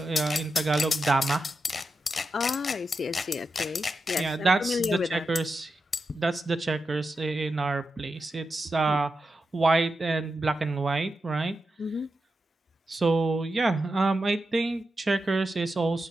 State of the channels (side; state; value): both; normal; correlation 0.89